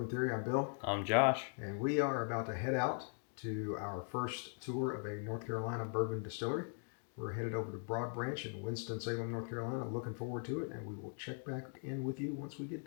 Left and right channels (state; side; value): silent; right; 51 dB below the other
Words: Theory. I'm Bill. I'm Josh. And we are about to head out to our first tour of a North Carolina bourbon distillery. We're headed over to Broad Branch in Winston-Salem, North Carolina. Looking forward to it, and we will check back in with you once we get